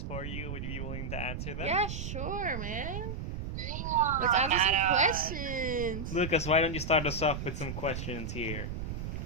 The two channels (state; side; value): noise; right; rumble, 5 dB below the sound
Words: for you. Would you be willing to answer them? Yeah, sure, man. Yeah. Let's answer some questions. Lucas, why don't you start us off with some questions here?